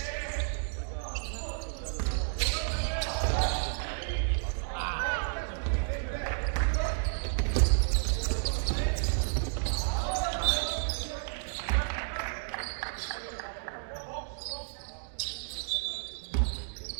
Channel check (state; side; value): silent; left; digital silence